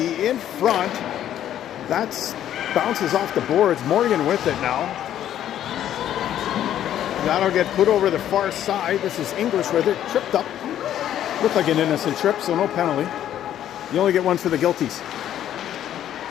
in front. That's bounces off the boards. Morgan with it now. That'll get put over the far side. This is English with it. Tripped up. Looked like an innocent trip, so no penalty. You only get one for the guilties.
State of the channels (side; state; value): right; quieter; 11.1 dB